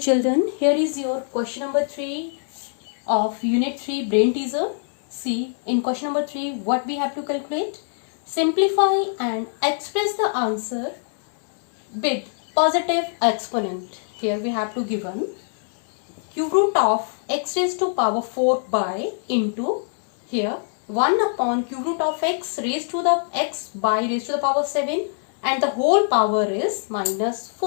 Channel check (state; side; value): silent; right; digital silence